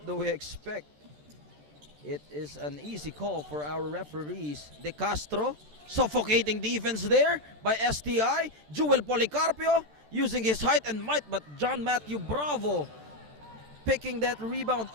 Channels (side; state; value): left; late; 13 ms